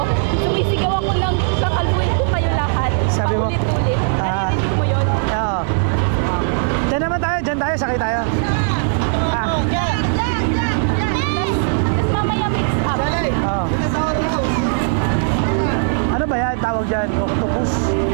sumisigaw ako ng kakalbuin ko kayo lahat. Sabi mo? Paulit-ulit. Narinig mo yun? Oo. Diyan naman tayo, dyan tayo, sakay tayo. Tapos mamaya mix up. Oo. Ano ba yan? Tawag dyan? Octopus.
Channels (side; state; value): left; silent; digital silence